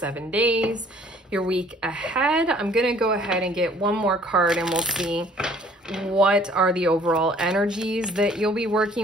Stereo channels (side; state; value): both; normal; correlation 0.57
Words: days, your week ahead. I'm going to go ahead and get one more card and we'll see what are the overall energies that you'll be